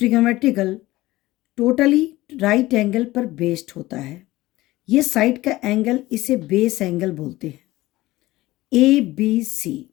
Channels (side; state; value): right; quieter; 18.0 dB